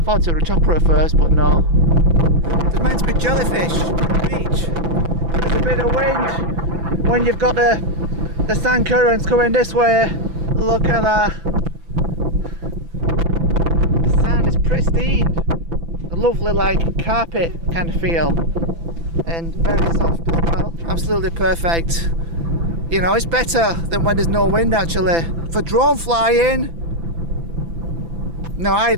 thought it was a chopper at first, but no. There's meant to be jellyfish on the beach. There's a bit of wind when you've got the sand currents coming this way. Look at that. The sand is pristine. A lovely like carpet kind of feel. And very soft as well. Absolutely perfect. You know, it's better than when there's no wind actually. For drone flying, no,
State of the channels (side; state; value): left; late; 6.0 ms